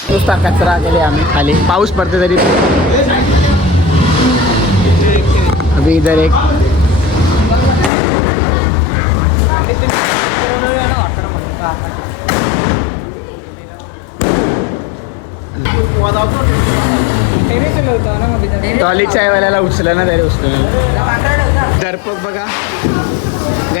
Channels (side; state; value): right; drops out; at 7.9 s